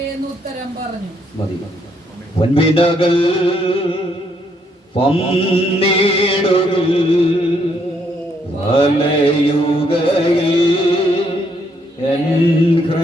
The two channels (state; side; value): normal; both; correlation 0.72